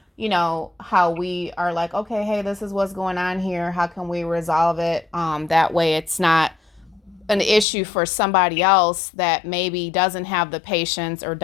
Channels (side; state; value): right; drops out; at 7.7 s